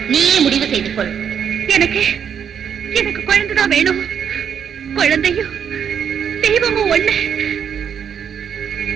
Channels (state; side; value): quieter; left; 8.0 dB